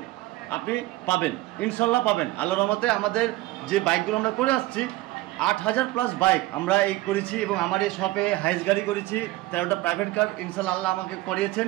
আপনি পাবেন, ইনশাল্লাহ পাবেন আল্লাহর রহমতে। আমাদের যে বাইকগুলো আমরা করে আসছি 8000+ বাইক আমরা এই করেছি, এবং আমার এই শপে হাইস গাড়ি করেছি, 13টা প্রাইভেট কার ইনশাল্লাহ আল্লাহ আমাকে করিয়েছেন,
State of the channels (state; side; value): quieter; left; 18.5 dB